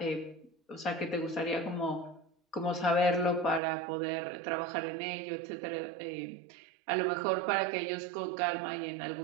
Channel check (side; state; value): left; drops out; at 3.6 s